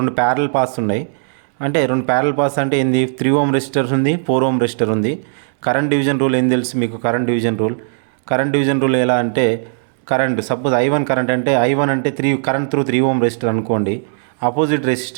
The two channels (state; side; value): silent; left; 68 dB below the other